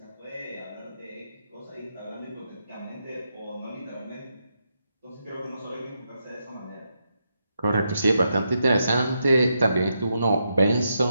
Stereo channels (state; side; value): inverted; both; correlation -0.83